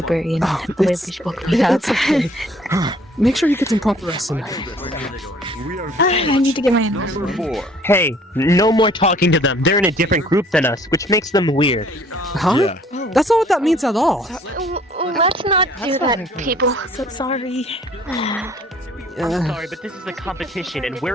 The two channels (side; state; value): both; normal; correlation 0.57